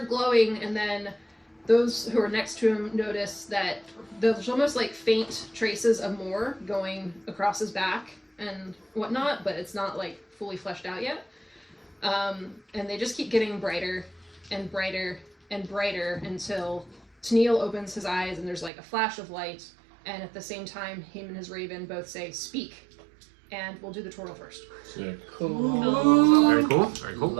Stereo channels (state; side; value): drops out; left; at 18.7 s